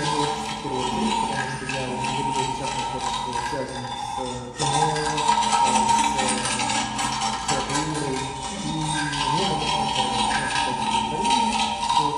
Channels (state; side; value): identical; both; correlation 1.00